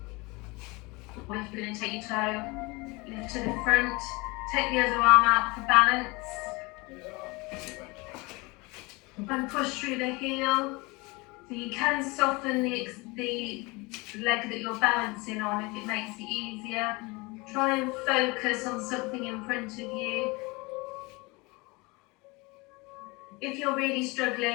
Or if you're going to take your toe, lift to the front, take the other arm out for balance, and push through the heel. So you can soften the leg that you're balancing on if it makes it easier. Try and focus on something in front of you. If you're really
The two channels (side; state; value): right; quieter; 25.5 dB